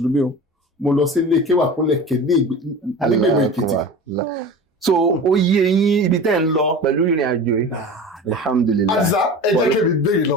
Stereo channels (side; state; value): both; normal; correlation 0.34